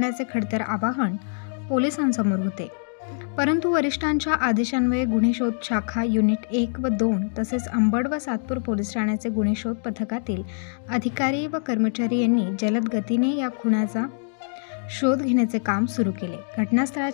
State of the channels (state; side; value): silent; right; digital silence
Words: खडतर आवाहन पोलिसांसमोर होते। परंतु वरिष्ठांच्या आदेशान्वये गुन्हे शोध शाखा युनिट 1 व 2 तसेच अंबड व सातपूर पोलीस ठाण्याचे गुन्हे शोध पथकातील अधिकारी व कर्मचारी यांनी जलद गतीने या खुनाचा शोध घेण्याचे काम सुरू केले।